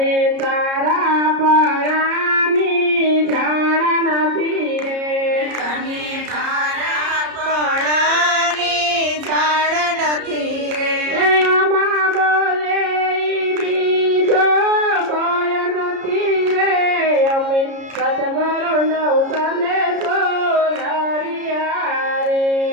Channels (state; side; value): late; left; 33 ms